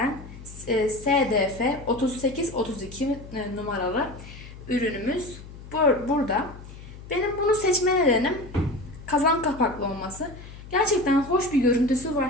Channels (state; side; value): noise; left; hum, 15 dB below the sound